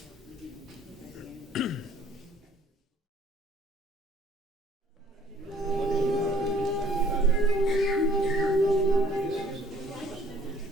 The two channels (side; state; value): both; normal; correlation 0.57